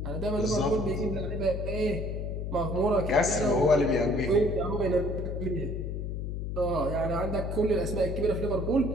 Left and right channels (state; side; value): noise; left; hum, 4 dB below the sound